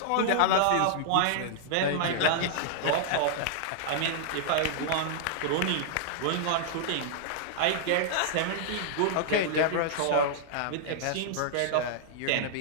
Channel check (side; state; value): both; different; correlation -0.01